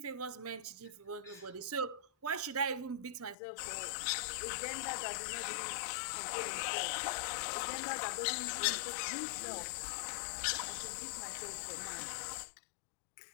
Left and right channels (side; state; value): right; drops out; at 3.4 s